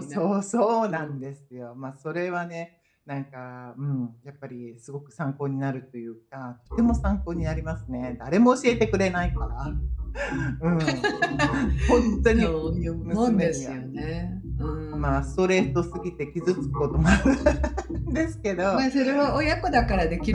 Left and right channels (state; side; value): identical; both; correlation 1.00